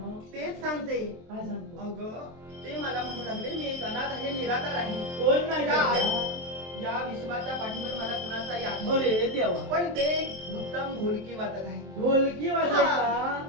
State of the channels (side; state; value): left; late; 23 ms